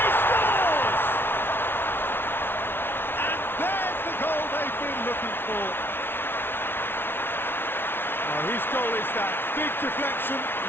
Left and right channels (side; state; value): right; late; 0.11 ms